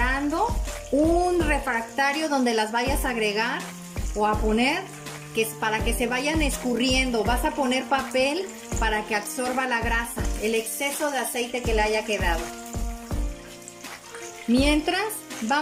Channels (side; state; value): both; identical; correlation 1.00